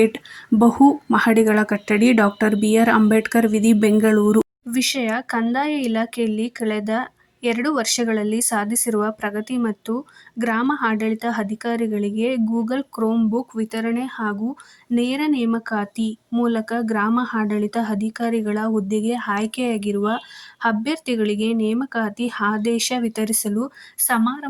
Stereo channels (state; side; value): identical; both; correlation 1.00